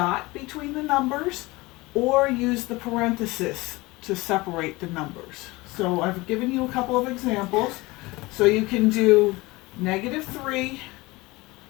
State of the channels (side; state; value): right; quieter; 22.0 dB